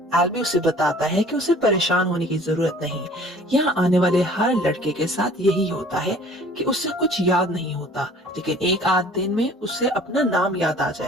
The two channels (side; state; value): both; normal; correlation 0.50